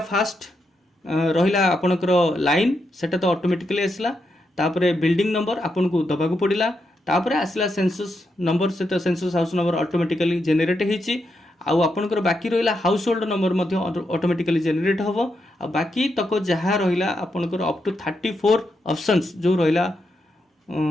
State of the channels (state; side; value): normal; both; correlation 0.83